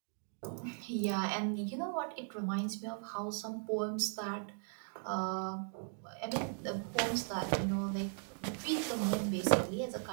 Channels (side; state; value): left; silent; 52 dB below the other